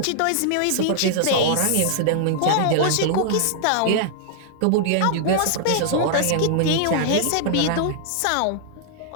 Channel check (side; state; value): both; different; correlation -0.01